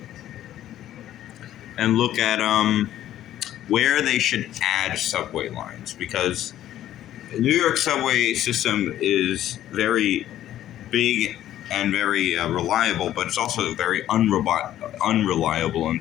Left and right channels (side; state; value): right; quieter; 12.4 dB